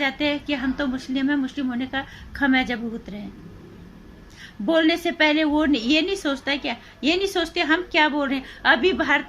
हैं कि हम तो मुस्लिम हैं, मुस्लिम होने का खमियाजा भुगत रहे हैं। बोलने से पहले वो ये नहीं सोचता क्या, ये नहीं सोचते हम क्या बोल रहे हैं। अभी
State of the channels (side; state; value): both; identical; correlation 1.00